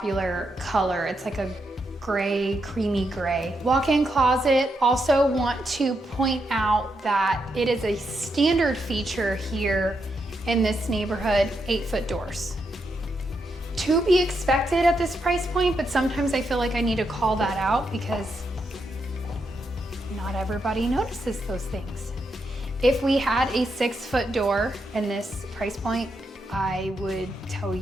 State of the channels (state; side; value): normal; both; correlation 0.82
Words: color. It's like a gray, creamy gray. Walk-in closet. Also want to point out that it is a standard feature here in this neighborhood, 8-foot doors. To be expected at this price point, but sometimes I feel like I need to call that out because not everybody notices those things. If we had a 6-foot door in this price point, I would tell